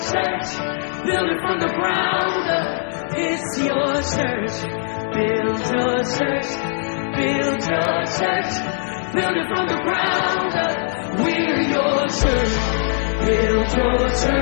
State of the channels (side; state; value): right; silent; 63 dB below the other